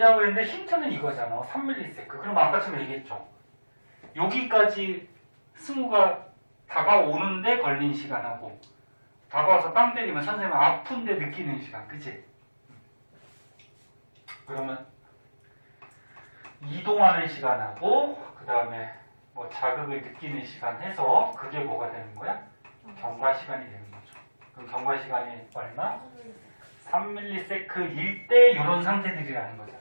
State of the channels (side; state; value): both; inverted; correlation -1.00